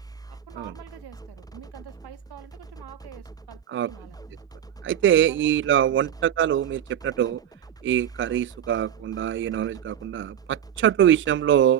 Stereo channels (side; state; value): left; quieter; 10.2 dB